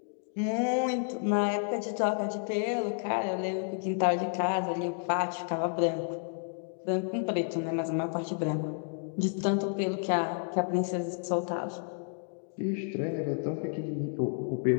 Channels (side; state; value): right; silent; 57 dB below the other